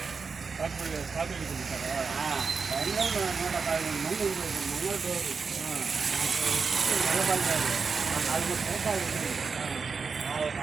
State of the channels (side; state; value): left; quieter; 5.1 dB